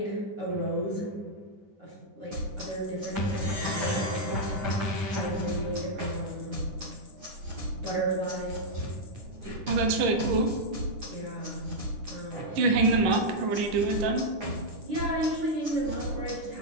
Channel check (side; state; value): left; late; 10 ms